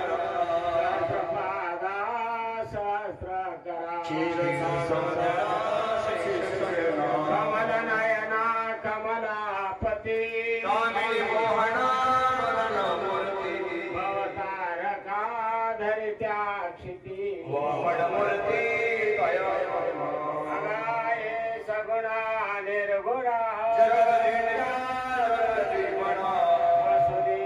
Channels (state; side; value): identical; both; correlation 1.00